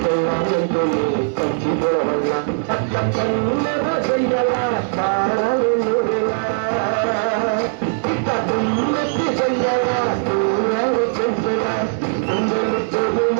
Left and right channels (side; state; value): left; silent; 66 dB below the other